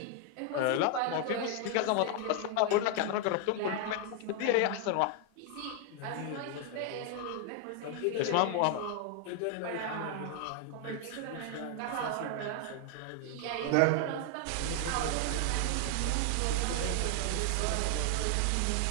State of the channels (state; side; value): different; both; correlation 0.00